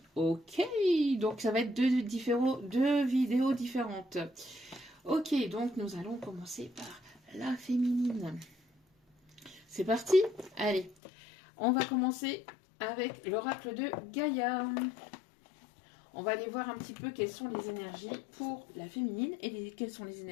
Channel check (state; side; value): drops out; right; at 11.0 s